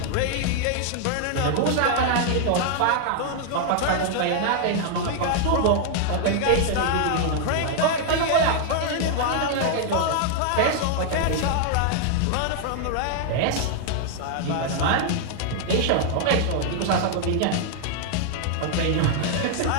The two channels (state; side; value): different; both; correlation 0.00